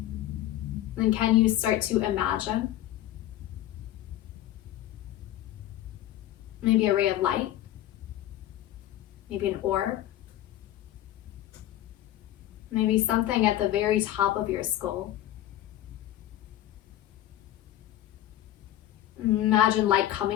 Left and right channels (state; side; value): quieter; right; 13.3 dB